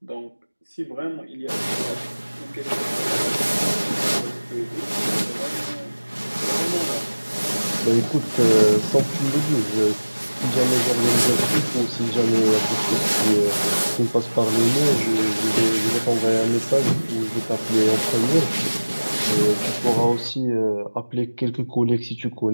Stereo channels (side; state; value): both; inverted; correlation -1.00